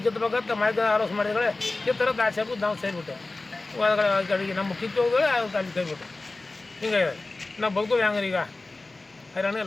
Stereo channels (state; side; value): quieter; right; 3.2 dB